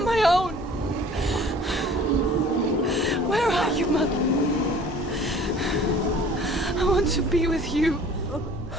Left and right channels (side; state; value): both; normal; correlation 0.49